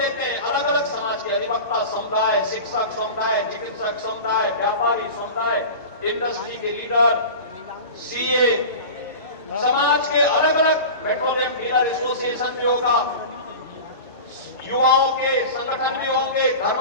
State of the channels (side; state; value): both; inverted; correlation -0.32